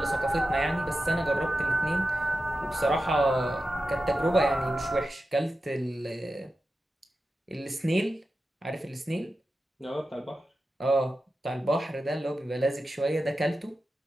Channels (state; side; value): normal; both; correlation 0.92